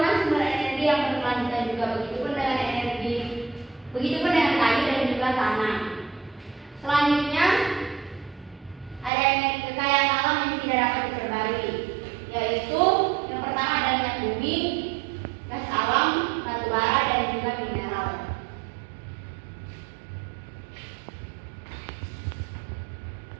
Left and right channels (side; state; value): left; drops out; at 9.1 s